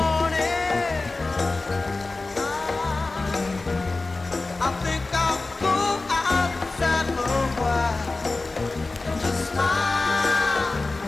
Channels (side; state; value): right; quieter; 3.4 dB